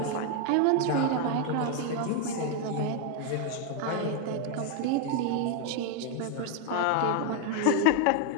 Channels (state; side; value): different; both; correlation 0.01